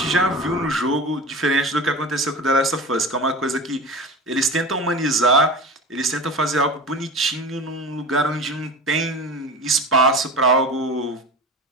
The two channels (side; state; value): both; normal; correlation 0.31